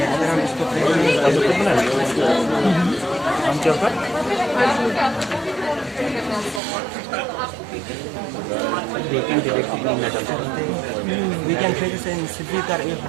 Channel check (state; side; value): drops out; left; at 6.6 s